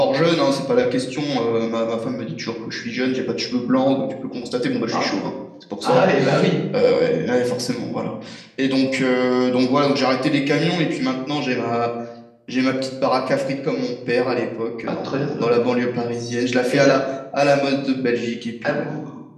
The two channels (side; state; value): both; identical; correlation 1.00